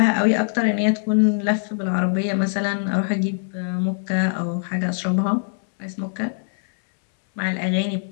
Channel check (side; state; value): right; silent; 64 dB below the other